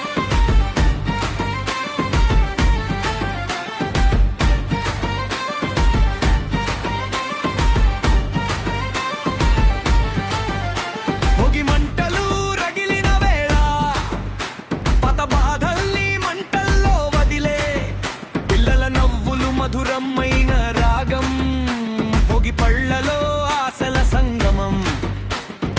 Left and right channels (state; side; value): identical; both; correlation 1.00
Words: మధురమైన రాగం పొగి పళ్ళలో ఆశల సంగమం,